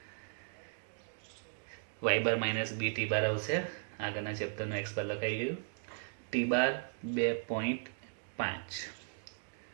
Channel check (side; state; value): left; silent; digital silence